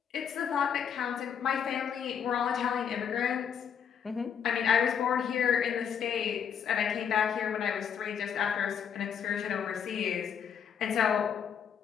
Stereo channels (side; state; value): right; quieter; 7.9 dB